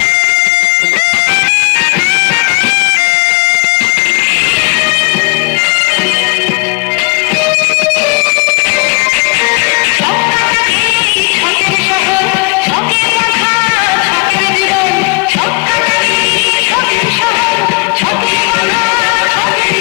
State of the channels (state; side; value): quieter; right; 29.1 dB